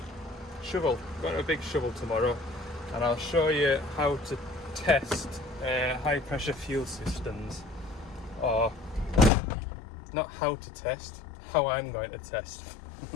Shovel. Got a big shovel tomorrow, and I'll show you how to test high pressure fuel systems, or not how to test, how I'm going to test.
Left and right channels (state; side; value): drops out; right; at 9.3 s